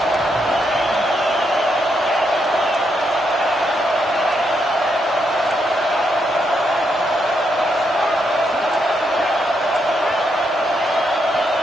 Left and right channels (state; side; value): normal; both; correlation 0.79